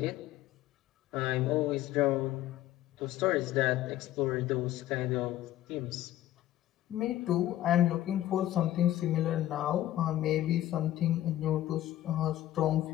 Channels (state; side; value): quieter; right; 13.6 dB